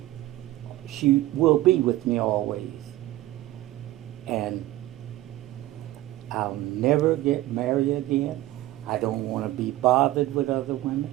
She will be with me always. And I'll never get married again. I don't want to be bothered with other women.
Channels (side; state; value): left; quieter; 15.9 dB